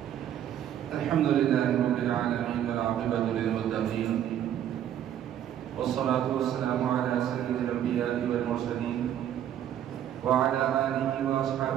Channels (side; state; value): left; quieter; 10.6 dB